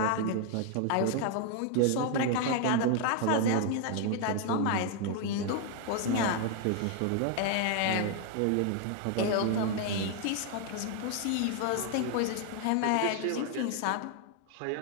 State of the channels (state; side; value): different; both; correlation 0.00